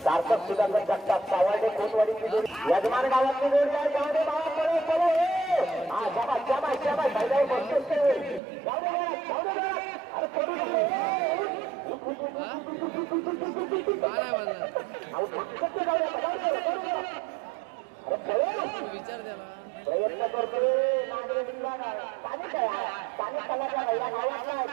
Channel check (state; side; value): drops out; left; at 8.4 s